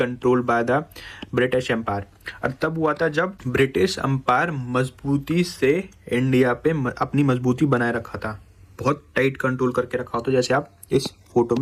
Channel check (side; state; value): both; identical; correlation 1.00